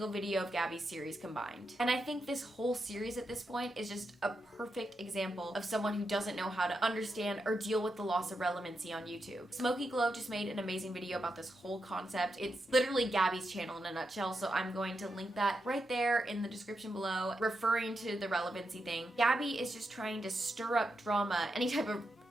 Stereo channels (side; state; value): both; normal; correlation 0.85